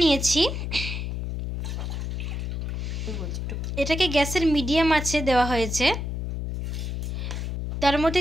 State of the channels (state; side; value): noise; left; hum, 3 dB below the sound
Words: নিয়েছি। এটাকে গ্যাসের মিডিয়াম আঁচে দেওয়া হয়েছে। তার মধ্যে